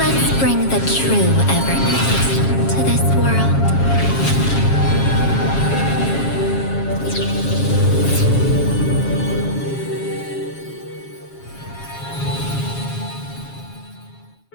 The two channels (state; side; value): late; right; 7.3 ms